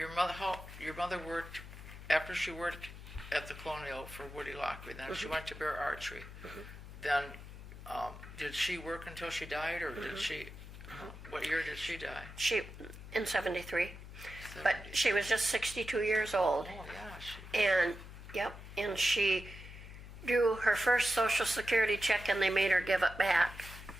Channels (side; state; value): left; noise; hum, 13 dB below the sound